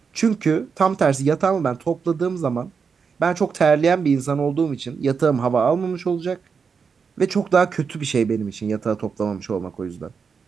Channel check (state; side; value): quieter; left; 5.8 dB